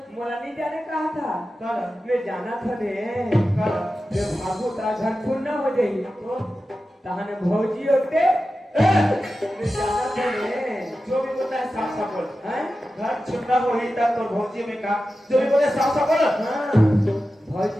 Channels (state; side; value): normal; both; correlation 0.93